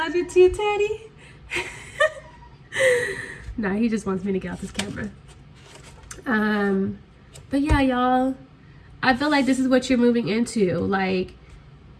it too, Teddy? Nah, he just wants me to get off this camera. But yeah, y'all, I feel like this is what you're moving into. Like,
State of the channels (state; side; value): identical; both; correlation 1.00